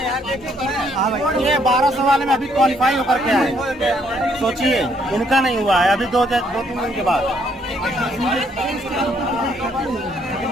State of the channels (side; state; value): both; normal; correlation 0.69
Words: ये 1200 वाले में अभी क्वालिफाई होकर के आए, सोचिए इनका नहीं हुआ है अभी 2-3 दिन के बाद।